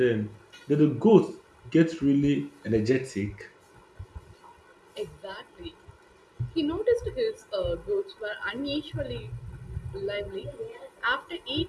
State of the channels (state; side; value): identical; both; correlation 1.00